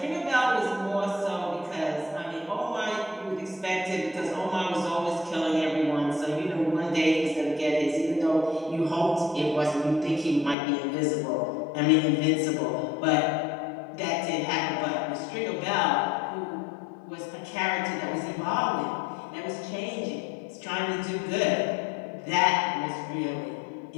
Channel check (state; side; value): drops out; right; at 10.6 s